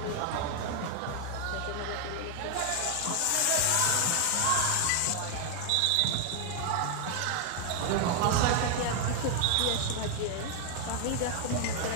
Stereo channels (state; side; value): different; both; correlation 0.00